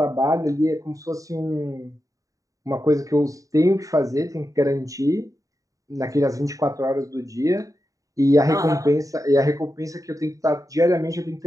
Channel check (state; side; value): late; left; 0.16 ms